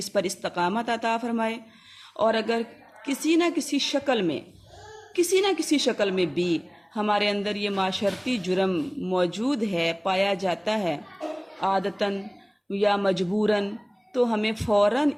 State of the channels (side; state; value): both; identical; correlation 1.00